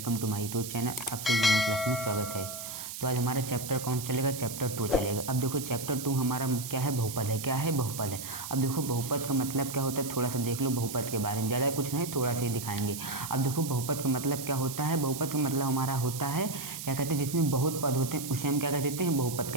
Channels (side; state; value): right; noise; hiss, 8 dB below the sound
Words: to my YouTube channel. आपसे यूनिट क्लास में स्वागत है। तो आज हमारा चैप्टर कौन सा चलेगा? चैप्टर 2 चलेगा। अब देखो चैप्टर 2 हमारा क्या है? बहुपद है। क्या है? बहुपद है। अब देखो बहुपद का मतलब क्या होता है, थोड़ा सा देख लो बहुपद के बारे में। ज़्यादा कुछ नहीं, थोड़ा सा ही दिखाएंगे। अब देखो बहुपद का मतलब क्या होता है। बहुपद का मतलब हमारा होता है, क्या कहते हैं, जिसमें बहुत पद होते हैं उसे हम क्या कह देते हैं? बहुपद